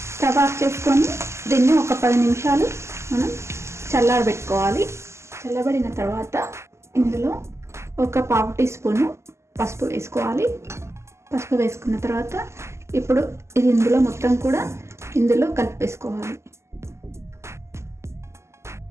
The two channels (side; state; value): left; late; 0.13 ms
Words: స్టవ్ ఆఫ్ చేసుకొని దీన్ని 10 నిమిషాలు మనం చల్లారబెట్టుకోవాలి. చల్లబడిన తర్వాత ఇందులో 1/4 టీ స్పూను పసుపు వేసుకోవాలి. పసుపు వేసుకున్న తర్వాత ఇప్పుడు ఇది ఇందులో మొత్తం కూడా ఇందులో కలిపేసుకోవాలి.